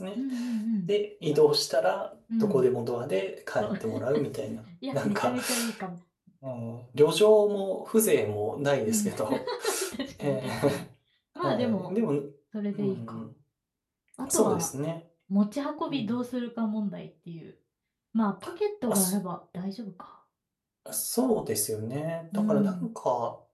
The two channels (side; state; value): both; identical; correlation 1.00